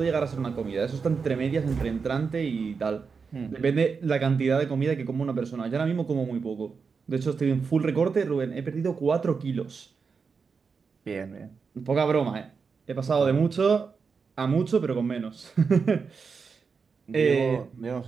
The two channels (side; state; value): left; quieter; 5.3 dB